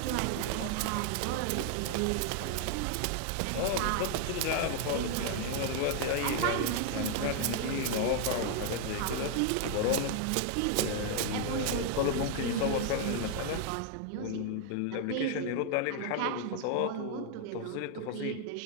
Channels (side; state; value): both; different; correlation 0.00